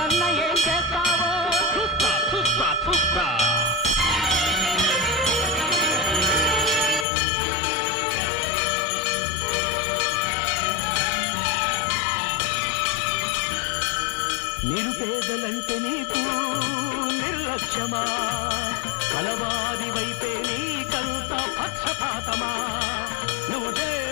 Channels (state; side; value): drops out; right; at 7.1 s